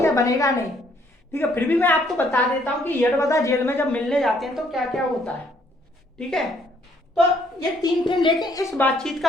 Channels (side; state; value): both; normal; correlation 0.66